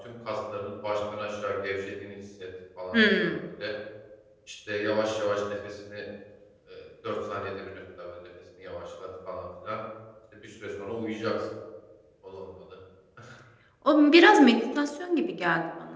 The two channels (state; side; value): identical; both; correlation 1.00